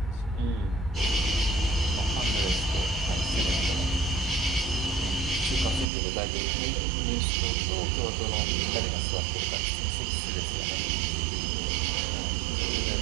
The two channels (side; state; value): left; drops out; at 5.9 s